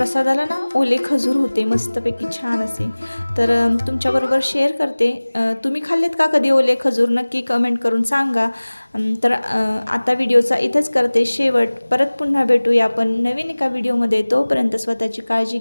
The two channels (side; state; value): both; inverted; correlation -1.00